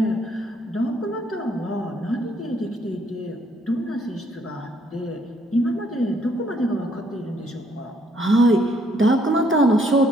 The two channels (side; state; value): both; normal; correlation 0.67